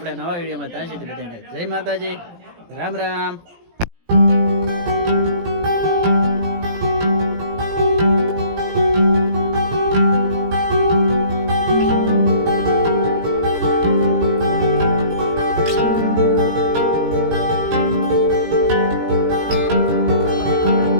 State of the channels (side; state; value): left; late; 17 ms